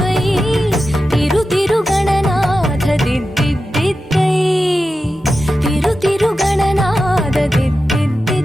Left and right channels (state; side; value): normal; both; correlation 0.92